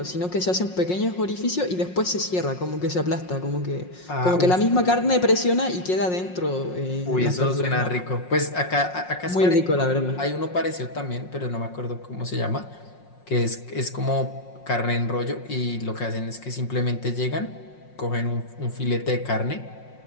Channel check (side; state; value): right; late; 5.5 ms